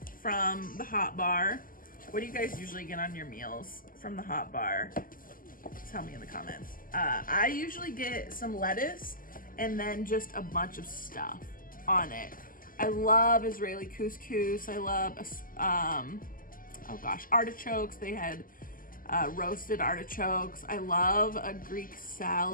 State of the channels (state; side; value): late; right; 0.41 ms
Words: from the Hot Bar. What do you guys usually get on your meals from the Hot Bar? Tell me in the comments. I usually get some lettuce and then just a bunch of stuff on it. I love Israeli couscous. I love, oh gosh, artichokes. They had roasted artichokes. I love a Greek